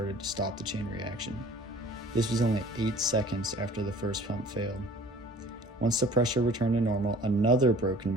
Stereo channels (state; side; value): normal; both; correlation 0.50